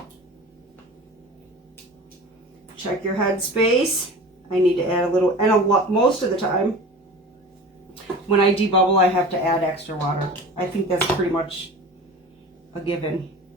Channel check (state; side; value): normal; both; correlation 0.37